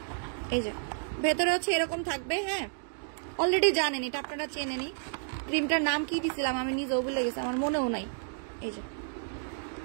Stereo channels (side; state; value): left; silent; digital silence